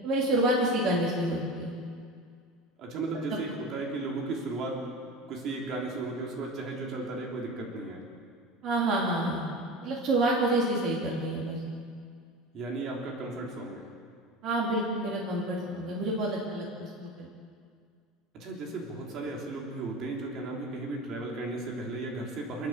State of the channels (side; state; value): both; normal; correlation 0.31